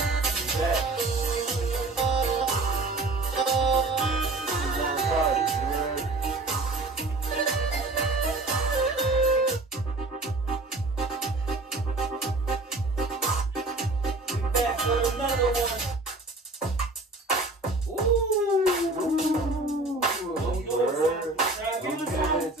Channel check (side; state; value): left; quieter; 3.1 dB